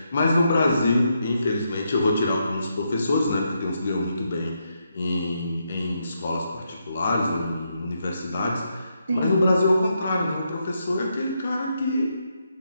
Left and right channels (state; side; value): inverted; both; correlation -0.80